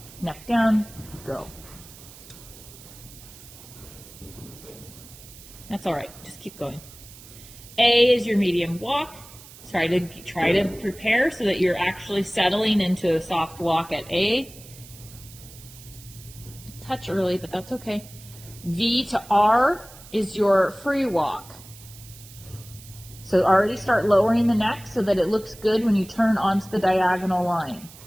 Neck down, go. That's all right, just keep going. A is your medium walk. Try to prepare so that you're actually settling into a soft walk at A. Touch early, but that's okay. V to R is your free walk. So already start lowering the neck so that it looks good when you turn onto the diagonal line.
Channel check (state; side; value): noise; right; hiss, 19 dB below the sound